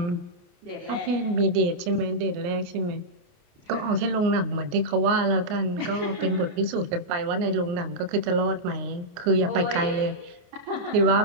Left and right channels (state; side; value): late; left; 28 ms